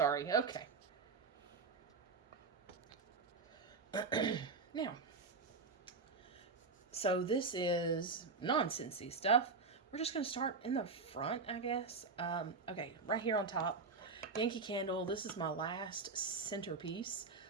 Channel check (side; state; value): left; quieter; 4.4 dB